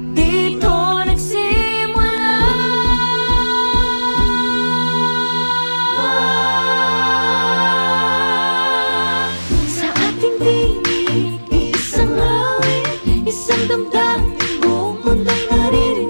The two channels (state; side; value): inverted; both; correlation -1.00